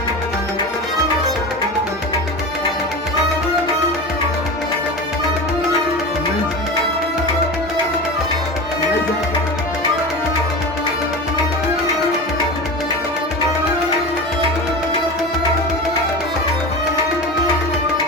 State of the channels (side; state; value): both; normal; correlation 0.28